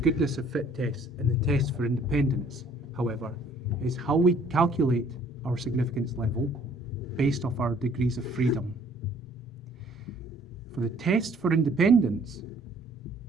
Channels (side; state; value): both; normal; correlation 0.58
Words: of fit test and the test for independence, however, is how we calculate our significance level based off our degrees of freedom. For the test for independence,